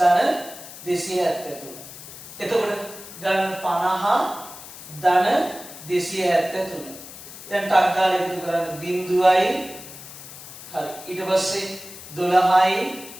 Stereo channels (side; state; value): left; noise; hiss, 15 dB below the sound